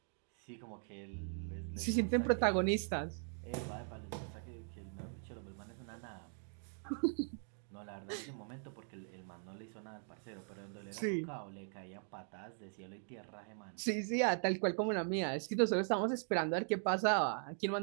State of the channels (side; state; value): left; silent; 51 dB below the other